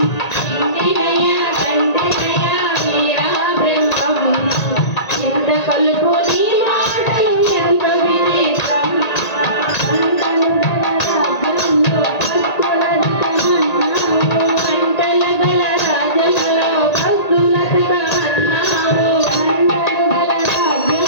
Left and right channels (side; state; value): right; late; 1.9 ms